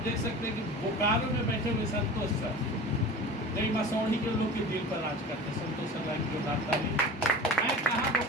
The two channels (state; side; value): normal; both; correlation 0.36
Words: देख सकते हैं कि बोकारो में बैठे हुए संतोष सर कई मसौड़ी के लोग के दिल पर राज करते हैं। संतोष सर लाइन की बात मैं कहाँ